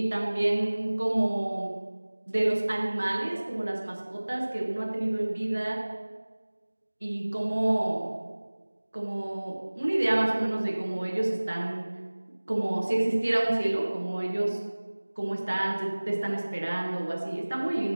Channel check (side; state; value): both; inverted; correlation -1.00